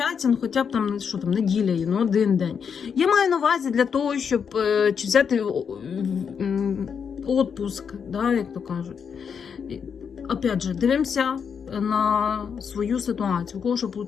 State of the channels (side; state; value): right; quieter; 6.8 dB